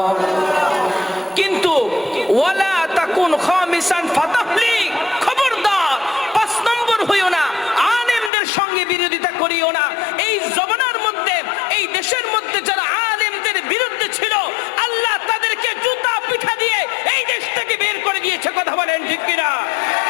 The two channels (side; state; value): right; drops out; at 8.3 s